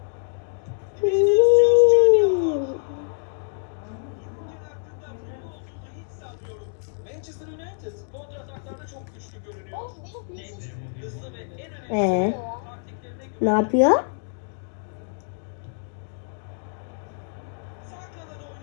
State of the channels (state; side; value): silent; right; digital silence